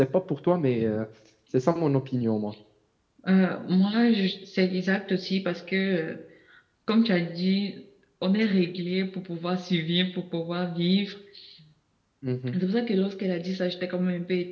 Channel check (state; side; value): identical; both; correlation 1.00